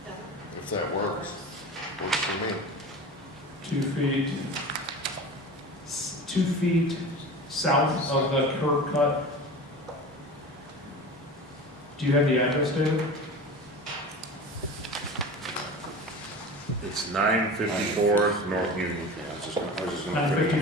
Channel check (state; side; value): normal; both; correlation 0.33